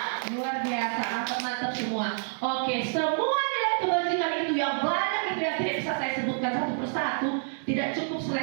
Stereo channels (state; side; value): silent; left; digital silence